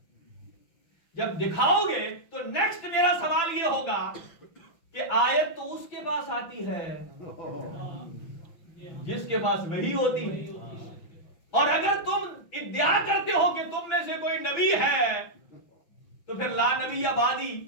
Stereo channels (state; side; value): late; right; 5.9 ms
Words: جب دکھاؤ گے تو نیکسٹ میرا سوال یہ ہوگا کہ آیت تو اس کے پاس آتی ہے جس کے پاس وحی ہوتی ہے. اور اگر تم ادعا کرتے ہو کہ تم میں سے کوئی نبی ہے تو پھر لا نبی یا بعدی